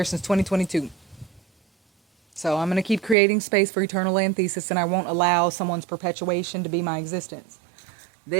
since 2022. So I'm going to keep creating space for Eternal Antheses, and I won't allow someone's perpetuation to be my existence.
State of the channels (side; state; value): left; drops out; at 3.2 s